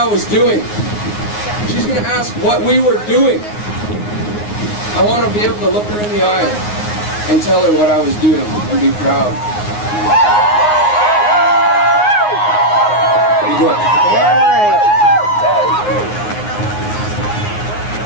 was doing. She's going to ask what we were doing. I want to be able to look her in the eye and tell her what I was doing and be proud. Be good.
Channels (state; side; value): late; right; 9.6 ms